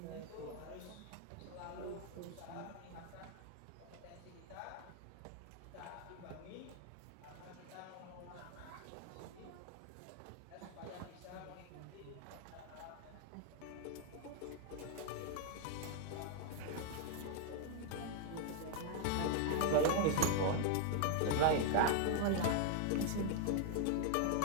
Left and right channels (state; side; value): different; both; correlation 0.00